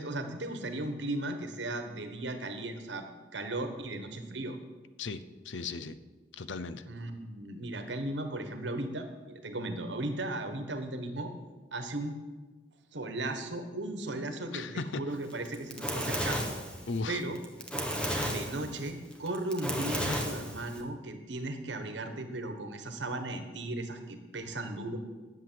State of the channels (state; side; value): normal; both; correlation 0.42